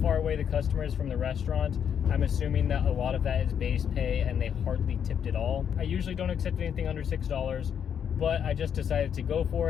away the customer is from the restaurant. I'm assuming that a lot of that is base pay and they hardly tipped at all. I usually don't accept anything under $6, but I just decided to go for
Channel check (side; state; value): right; quieter; 8.2 dB